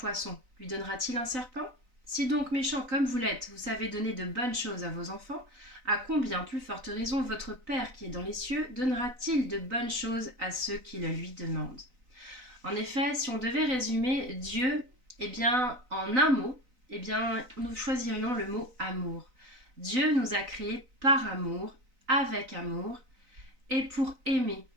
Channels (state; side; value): late; left; 3.9 ms